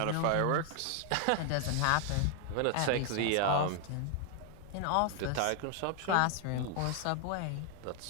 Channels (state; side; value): different; both; correlation 0.00